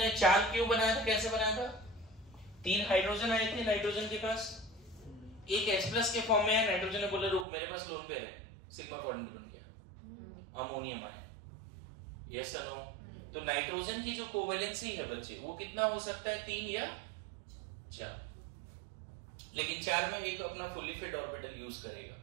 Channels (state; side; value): drops out; left; at 7.5 s